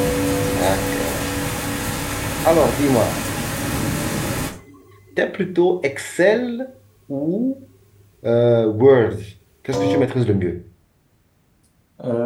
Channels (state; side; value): identical; both; correlation 1.00